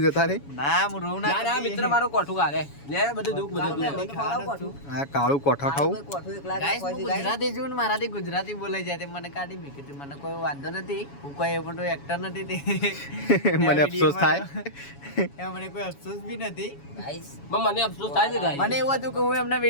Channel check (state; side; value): late; right; 7.1 ms